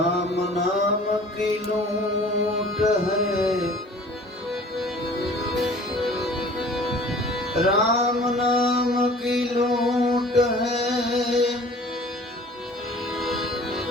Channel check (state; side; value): normal; both; correlation 0.48